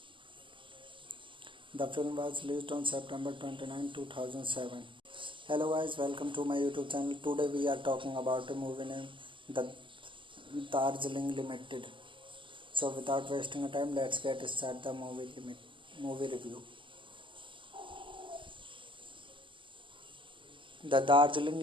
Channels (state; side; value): late; left; 0.25 ms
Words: The film was released on September 29, 2007. Hello guys, welcome to my YouTube channel. Today we are talking about a movie named The Darjeeling Limited. So without wasting time, let's get started the movie review. The Darjeeling